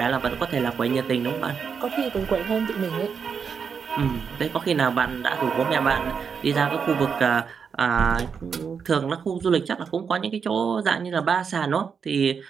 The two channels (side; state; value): left; quieter; 6.3 dB